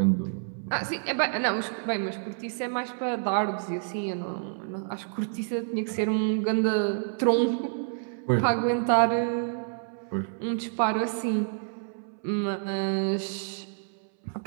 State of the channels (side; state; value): left; silent; 59 dB below the other